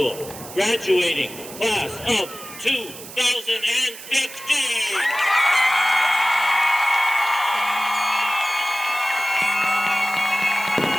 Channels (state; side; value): noise; right; hiss, 14 dB below the sound